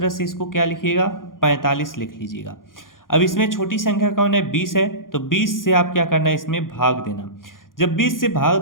से इसको क्या लिखिएगा? 45 लिख लीजिएगा। अब इसमें छोटी संख्या कौन है? 20 है, तो 20 से आप क्या करना है? इसमें भाग देना। जब 20 से भाग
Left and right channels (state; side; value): late; right; 0.90 ms